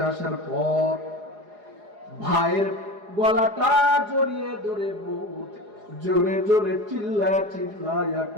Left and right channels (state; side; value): late; left; 4.8 ms